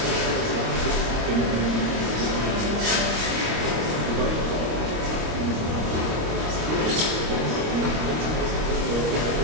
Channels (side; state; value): left; late; 26 ms